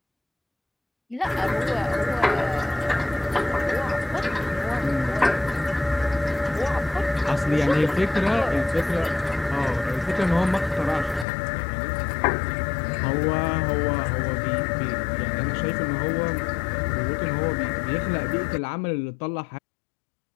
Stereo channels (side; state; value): right; drops out; at 11.2 s